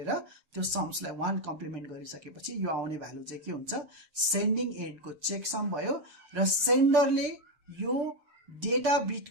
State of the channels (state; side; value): late; left; 7.0 ms